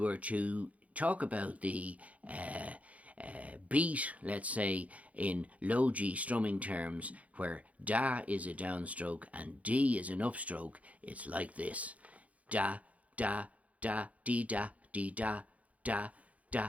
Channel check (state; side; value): late; left; 0.068 ms